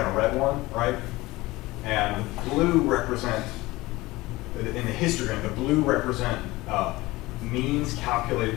a red one, right? And blue represent, in the histogram, the blue represent means calculated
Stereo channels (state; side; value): quieter; right; 20.0 dB